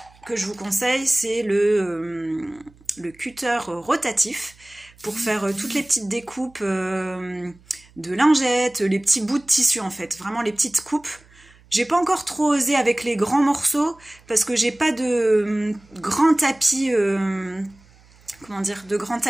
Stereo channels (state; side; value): noise; right; hum, 28 dB below the sound